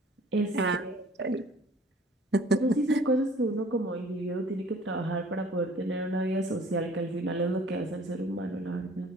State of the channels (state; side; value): normal; both; correlation 0.52